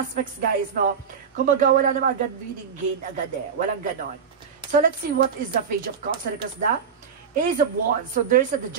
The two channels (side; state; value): left; quieter; 6.7 dB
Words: guys, no? Kumbaga, wala naman agad winning gain agad eh. Walang ganon. So let's see what is the Page of Cups. Because the Ace of Wands. So there's the